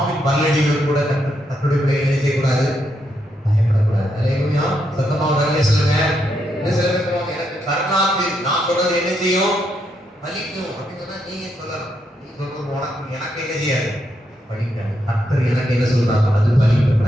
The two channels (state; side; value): normal; both; correlation 0.80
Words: பல்லடிகள் கூட தன்னுடைய பிள்ளைகளை என்ன செய்யக்கூடாது? பயப்படக்கூடாது. அல்லேலூயா. சத்தமாக அல்லே சொல்லுங்க. இன்னும் சில பேர் சொல்லுவாங்க, எனக்கு கருணாந்தி நான் சொல்றது என்ன செய்யும்? பலிக்கும் அப்படின்னு சொன்னா நீங்க சொல்லலாம். நீ சொல்றது உனக்கு எனக்கு என்ன செய்யாது? படிக்காது. கர்த்தர் எனக்கு என்ன சொல்றாங்க? அது பலிக்கும்.